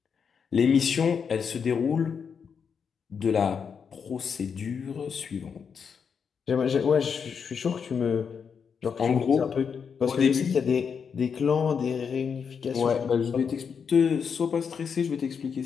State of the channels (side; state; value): right; quieter; 6.5 dB